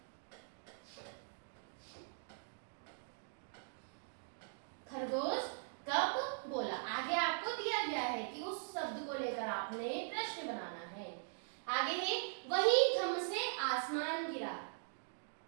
खरगोश कब बोला। आगे आपको दिया गया है कि उस शब्द को लेकर आपने प्रश्न बनाना है। आगे है वही धम से आसमान गिरा।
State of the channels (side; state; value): left; silent; digital silence